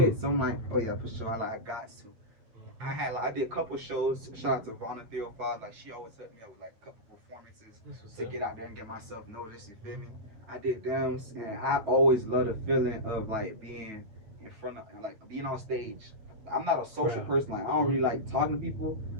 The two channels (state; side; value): late; left; 9.3 ms